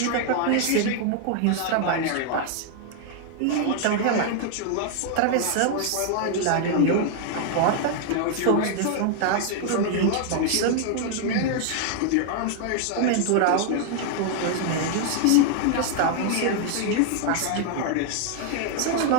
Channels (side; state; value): both; different; correlation 0.00